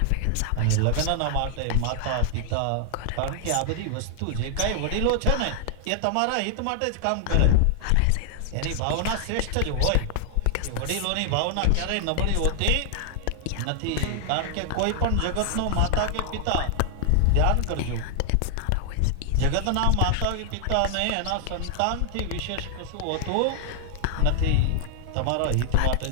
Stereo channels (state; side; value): different; both; correlation 0.00